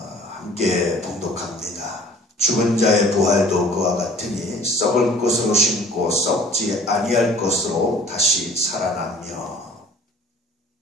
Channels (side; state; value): both; normal; correlation 0.50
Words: 봉독합니다. 죽은 자의 부활도 그와 같으니 썩을 것으로 심고 썩지 아니할 것으로 다시 살아나며.